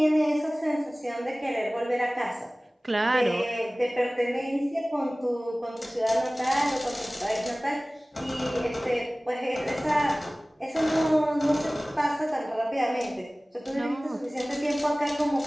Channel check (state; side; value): normal; both; correlation 0.98